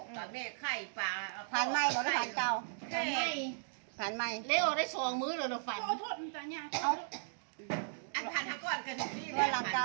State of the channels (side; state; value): left; silent; digital silence